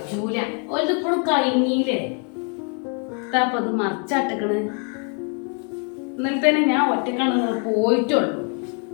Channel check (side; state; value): right; quieter; 38.4 dB